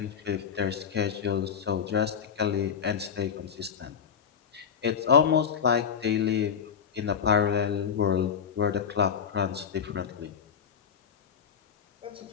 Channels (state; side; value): quieter; right; 7.2 dB